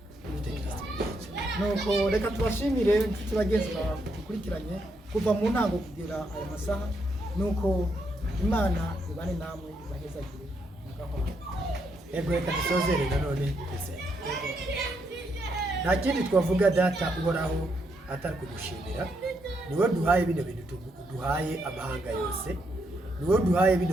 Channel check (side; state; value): both; normal; correlation 0.78